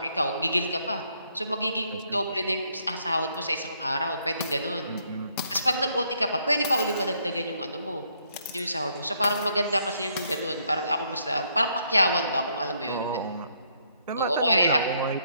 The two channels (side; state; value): both; inverted; correlation -0.71